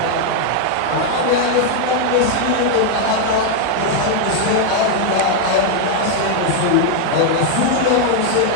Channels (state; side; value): different; both; correlation 0.00